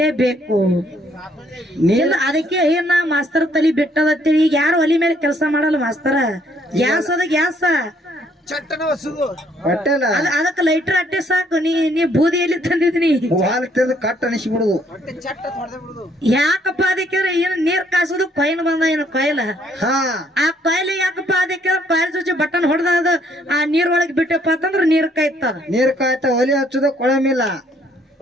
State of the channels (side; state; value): both; normal; correlation 0.66